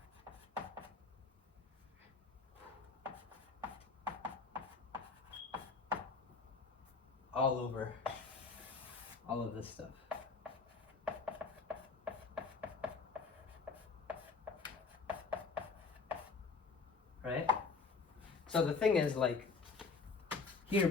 All over all of this stuff. Right? So the thing is, like, here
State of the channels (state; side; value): quieter; right; 4.6 dB